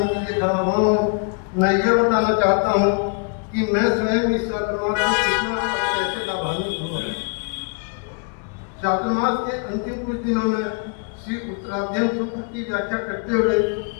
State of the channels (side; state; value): right; quieter; 37.0 dB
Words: के लिए खड़ा हुआ हूँ, मैं यह बताना चाहता हूँ कि मैं स्वयं इस चातुर्मास से कितना और कैसे लाभान्वित हुआ। चातुर्मास के अंतिम कुछ दिनों में श्री उत्तराध्ययन सूत्र की व्याख्या करते हुए